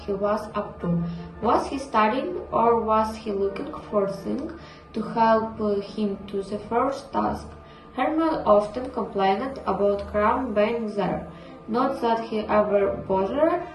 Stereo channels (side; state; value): both; identical; correlation 1.00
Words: he was up to. Was he studying, or was he looking for things to help him to the first task? Hermione often complained about Crumb being there. Not that he ever bothered